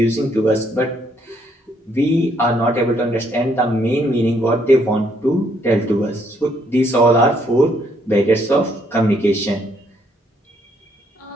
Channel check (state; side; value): normal; both; correlation 0.70